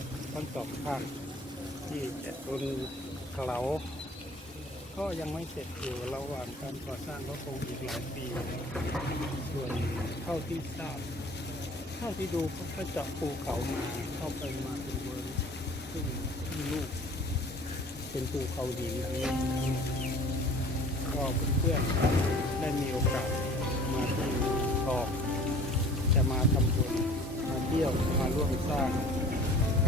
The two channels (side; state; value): both; normal; correlation 0.47